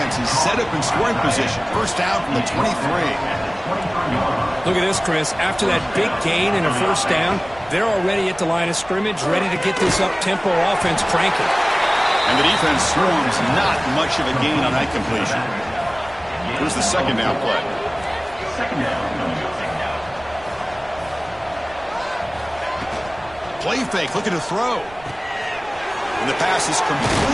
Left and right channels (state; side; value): noise; right; rumble, 22 dB below the sound